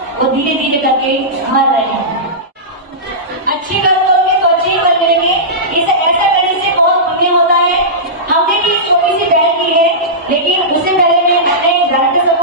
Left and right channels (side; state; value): both; normal; correlation -0.16